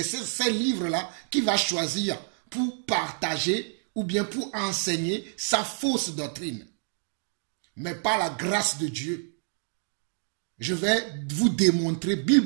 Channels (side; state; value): left; silent; 59 dB below the other